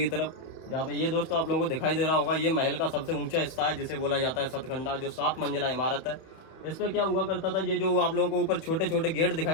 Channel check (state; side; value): late; right; 31 ms